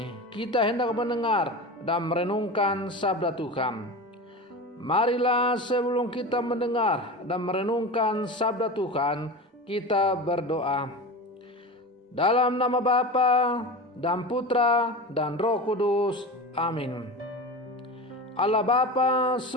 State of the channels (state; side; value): normal; both; correlation 0.28